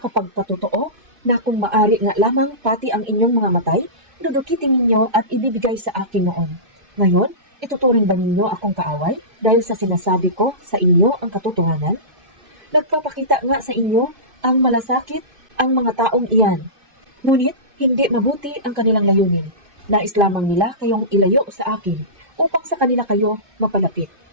na kung maari nga lamang pati ang inyong mga matay, dudukitin ninyo at ibibigay sa akin noon. Ngayon, ituturing ba ninyo akong kaaway dahil sa sinasabi ko sa inyo ang katotohanan? Nagpapakita nga sa inyo ang malasakit ang mga taong iyan. Ngunit, hindi mabuti ang kanilang layunin. Nais lamang nila kayong ilayo sa akin upang sa kanila kayo mapalapit.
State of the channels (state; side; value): late; left; 2.5 ms